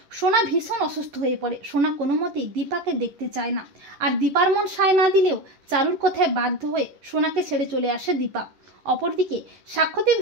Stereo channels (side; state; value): left; late; 10 ms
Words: সোনা ভীষণ অসুস্থ হয়ে পড়ে। সোনা কোনো মতেই দীপাকে দেখতে চায় না, আর দীপার মন সায় না দিলেও চারুর কথায় বাধ্য হয়ে সোনাকে ছেড়ে চলে আসে দীপা। অপরদিকে সাক্ষ্যদীপ